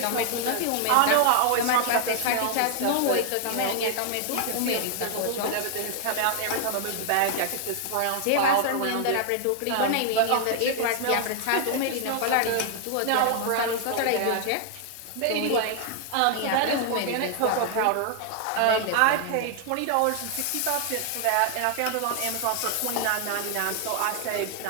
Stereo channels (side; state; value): both; different; correlation 0.00